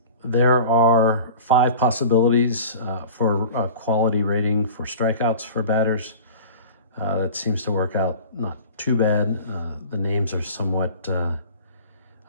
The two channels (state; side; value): inverted; both; correlation -0.40